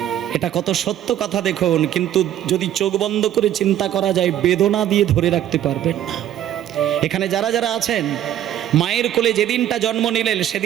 এটা কত সত্য কথা দেখুন। কিন্তু যদি চোখ বন্ধ করে চিন্তা করা যায়, বেদনা দিয়ে ধরে রাখতে পারবেন না। এখানে যারা যারা আছেন, মায়ের কোলে যেদিনটা জন্ম নিলেন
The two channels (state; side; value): quieter; left; 11.5 dB